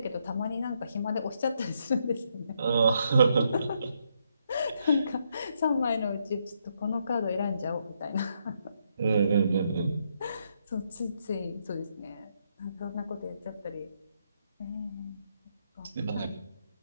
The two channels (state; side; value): inverted; both; correlation -0.77